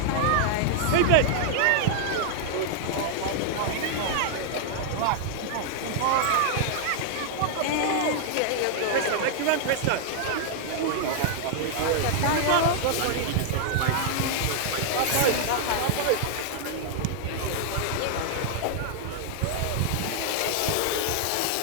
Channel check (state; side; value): different; both; correlation -0.01